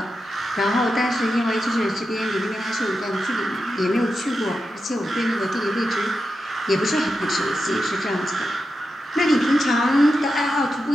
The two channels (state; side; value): normal; both; correlation 0.89